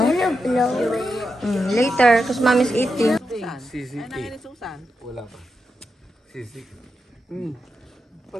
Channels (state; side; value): normal; both; correlation 0.87